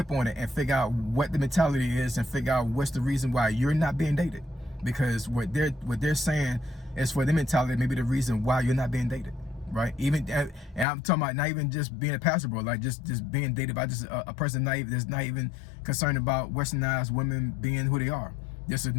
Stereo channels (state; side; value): drops out; right; at 10.9 s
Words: on it and figure out what the mentality is, and figure out what's the reason why you're not being dated. Because what they're saying is, for the mentality, maybe the reason why you're not being dated, right? Even, and I'm talking about not even just being a Paso Bro, like just being dated by just a person that's not even concerned about westernized women being who they are. Just a